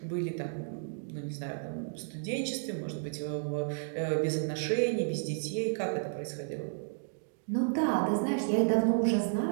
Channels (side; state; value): left; silent; digital silence